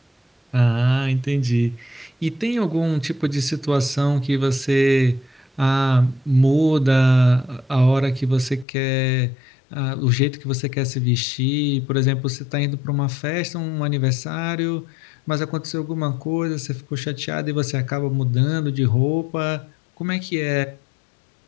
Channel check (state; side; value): drops out; right; at 8.7 s